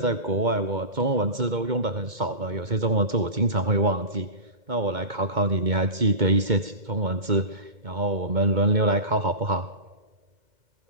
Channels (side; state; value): left; late; 2.2 ms